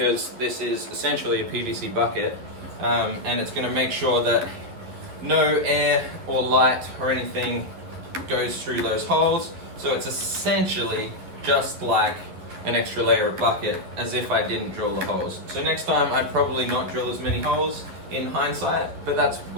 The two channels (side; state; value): left; late; 11 ms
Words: this is essentially a PVC bucket, and it's gonna make sure that no air or light or anything goes through those holes. So it's essentially just like an extra layer of bucket, as if I didn't drill the holes. So next time I'd probably not drill as many holes in hindsight, but that's